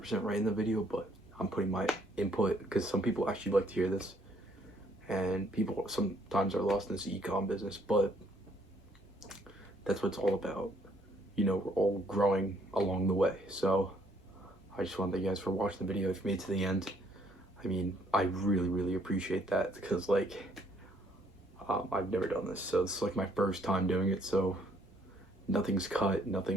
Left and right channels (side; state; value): both; normal; correlation 0.66